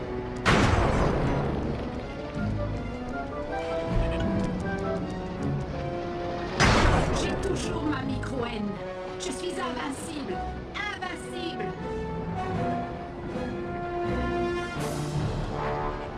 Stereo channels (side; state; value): both; identical; correlation 1.00